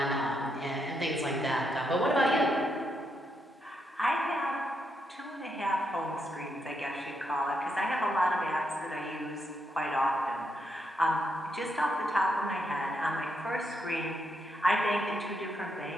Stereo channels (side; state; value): both; normal; correlation 0.80